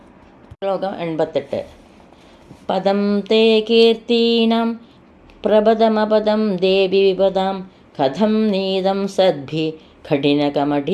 ശ്ലോകം 88. പദം തേ കീർത്തീനാം പ്രപദമപദം ദേവി വിപദാം കഥം നീതം സദ്ഭി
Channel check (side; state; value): both; identical; correlation 1.00